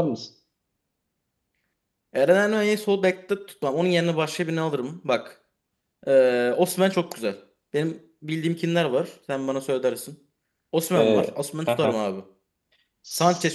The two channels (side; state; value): both; identical; correlation 1.00